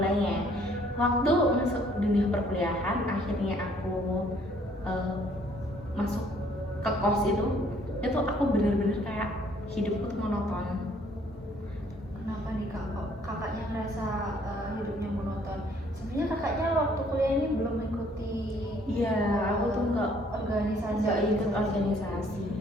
Waktu masuk dunia perkuliahan, akhirnya aku masuk ke kos itu aku bener-bener kayak hidupku tuh monoton. Kenapa nih kak? Kok kakaknya ngerasa hidupnya monoton? Sebenarnya kakaknya waktu kuliah ini belum mengikuti. Iya, aku tuh nggak ikut organisasi.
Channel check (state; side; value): normal; both; correlation 0.62